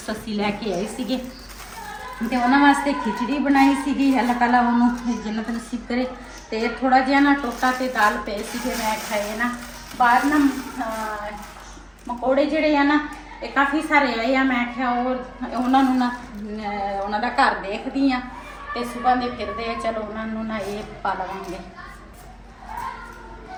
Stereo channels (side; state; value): both; identical; correlation 1.00